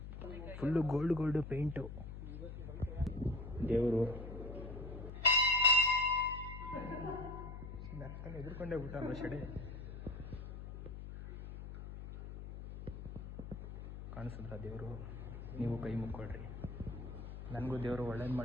ಫುಲ್ಲು ಗೋಲ್ಡ್ ಪೇಂಟು ದೇವರು ಎದುರ್ಕೊಂಡೇ ಬಿಟ್ಟ ಶೆಡೆ ಕಾಣಿಸಿದ್ರ ದೇವರು ನೀವು ಕೈ ಮುಕ್ಕೊಳ್ರಿ ನನಗೂ ದೇವರು ಒಳ್ಳೇದು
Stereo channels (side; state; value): left; noise; hum, 9 dB below the sound